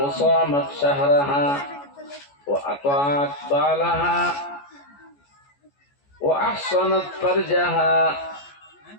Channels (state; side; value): late; right; 14 ms